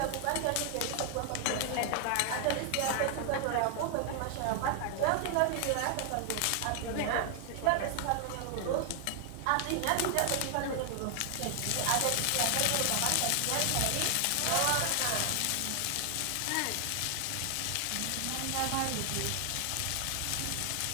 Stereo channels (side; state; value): both; different; correlation 0.00